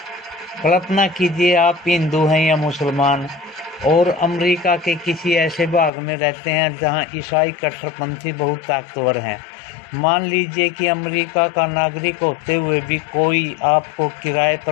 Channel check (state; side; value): drops out; right; at 5.9 s